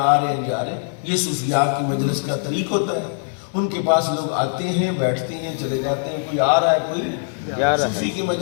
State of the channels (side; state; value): right; silent; digital silence